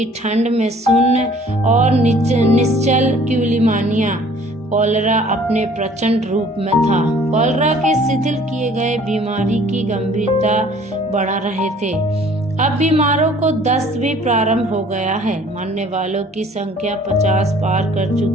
ठंड में सुन्न और निश्चल क्यूलिमानिया। कॉलरा अपने प्रचंड रूप में था। कॉलरा के शिथिल किए गए बीमारी की गंभीरता बढ़ा रहे थे। अब बीमारों को दस्त भी प्रारंभ हो गया है। मरने वालों की संख्या 50 पार कर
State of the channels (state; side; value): normal; both; correlation 0.54